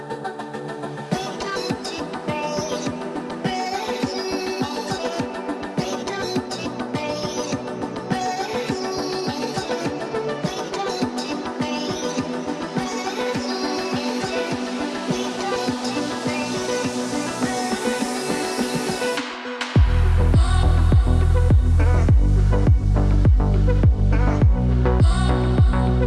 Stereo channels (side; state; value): both; identical; correlation 1.00